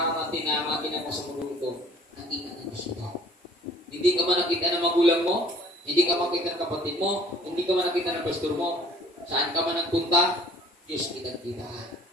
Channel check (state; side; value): normal; both; correlation 0.53